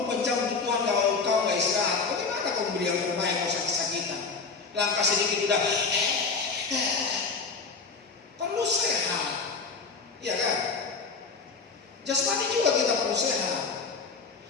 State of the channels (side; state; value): right; quieter; 4.7 dB